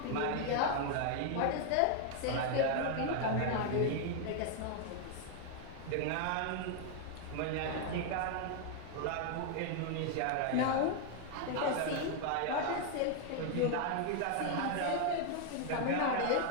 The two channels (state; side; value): different; both; correlation 0.00